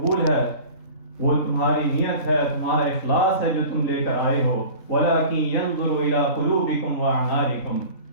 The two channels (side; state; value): right; late; 3.3 ms